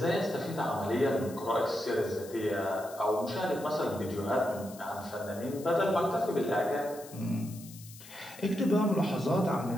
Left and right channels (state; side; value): noise; left; hiss, 18 dB below the sound